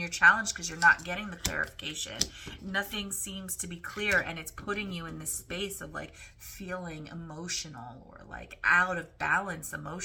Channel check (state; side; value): identical; both; correlation 1.00